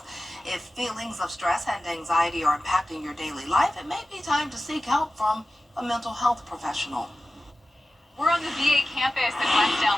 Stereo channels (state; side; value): normal; both; correlation 0.95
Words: If feelings of stress and anxiety are impacting your daily life, it may be time to seek help from a mental health professional. We're on the VA campus in West